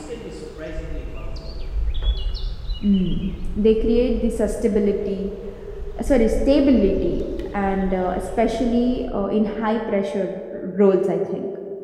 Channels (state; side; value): identical; both; correlation 1.00